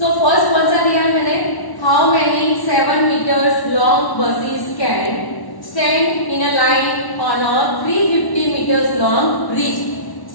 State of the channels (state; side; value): late; right; 1.1 ms